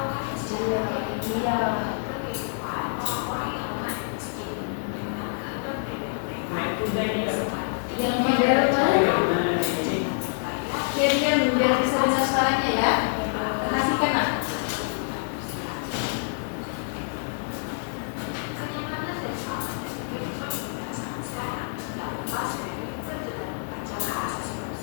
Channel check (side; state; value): right; silent; digital silence